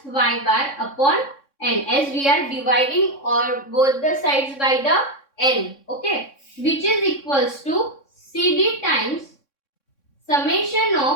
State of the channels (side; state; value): right; late; 3.6 ms